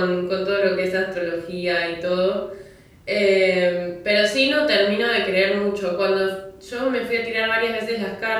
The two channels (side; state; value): both; identical; correlation 1.00